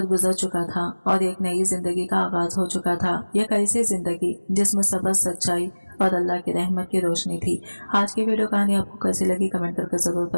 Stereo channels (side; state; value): both; inverted; correlation -1.00